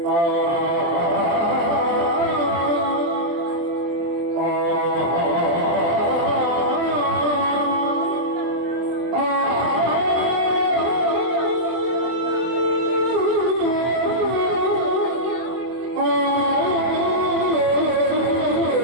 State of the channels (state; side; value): late; left; 24 ms